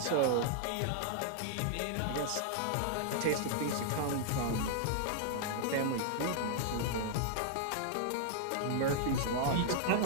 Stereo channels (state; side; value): different; both; correlation -0.01